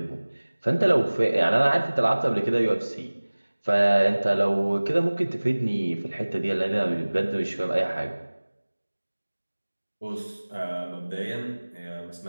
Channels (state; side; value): inverted; both; correlation -1.00